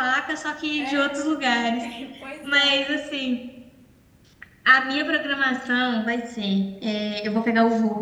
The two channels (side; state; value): both; identical; correlation 1.00